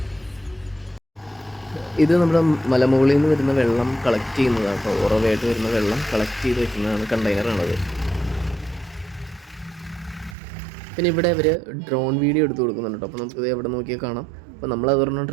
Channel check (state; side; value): drops out; left; at 10.4 s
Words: ഇത് നമ്മുടെ മലമുകളിൽ നിന്ന് വരുന്ന വെള്ളം കളക്ട് ചെയ്യുന്നതാണ് കേട്ടോ. ഉറവായിട്ട് വരുന്ന വെള്ളം കളക്ട് ചെയ്ത് വെക്കുന്നതാണ് കണ്ടെയ്നറാണത്. പിന്നെ ഇവിടെ അവർ ഡ്രോൺ വീഡിയോ എടുത്ത് കൊടുക്കുന്നുണ്ട് കേട്ടോ. അപ്പോൾ നമുക്കിത് എവിടെ നോക്കിയാൽ കാണാം. അപ്പോൾ നമ്മളതൊരെണ്ണം